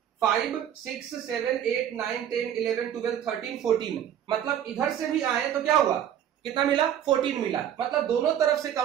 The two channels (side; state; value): left; quieter; 10.1 dB